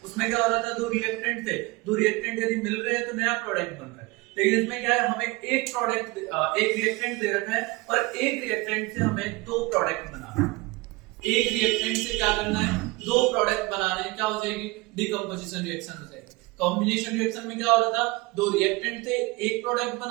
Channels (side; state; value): left; quieter; 23.3 dB